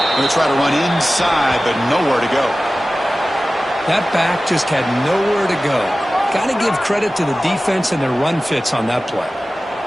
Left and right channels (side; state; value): both; normal; correlation 0.96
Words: Going to try to run inside, but nowhere to go. That back just had nowhere to go. Got to give credit to the defense and their run fits on that play.